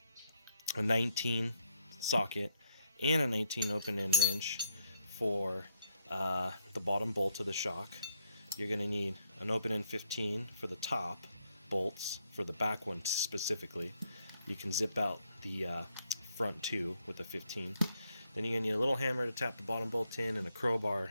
a 19 socket and a 19 open-end wrench for the bottom bolt of the shock. You're going to need an open-end 15 for the top bolts, for the back one specifically. You can zip out the front two with the 15. Then you're going to need a little hammer to tap the bottom bolt in and a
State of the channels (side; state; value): both; inverted; correlation -0.74